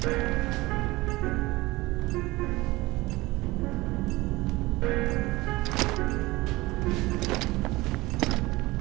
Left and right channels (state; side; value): quieter; left; 20.5 dB